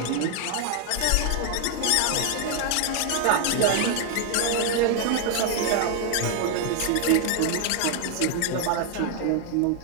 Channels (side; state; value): both; different; correlation 0.00